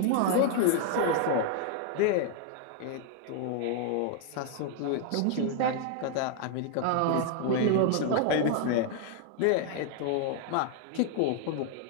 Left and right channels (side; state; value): both; different; correlation 0.00